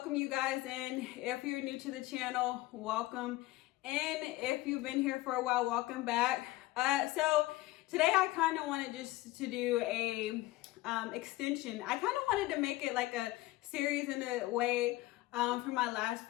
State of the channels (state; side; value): quieter; right; 18.2 dB